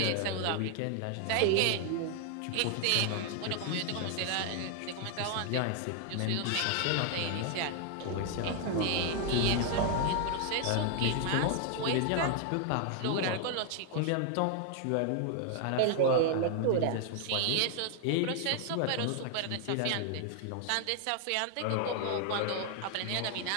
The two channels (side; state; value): both; different; correlation 0.00